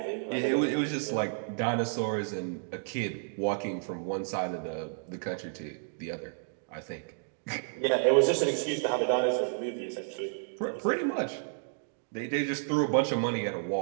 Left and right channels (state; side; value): silent; left; digital silence